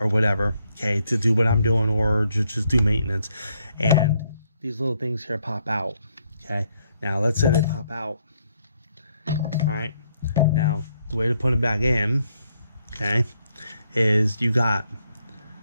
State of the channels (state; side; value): inverted; both; correlation -0.73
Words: or whatever, okay, to do what I'm doing, or just do maintenance, and these little things here pop out. Okay. Now let's say they pop out. All right. Now the way to put them back in, okay, is you got